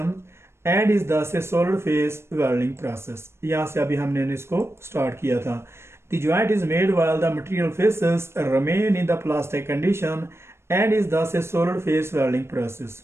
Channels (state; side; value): late; left; 0.12 ms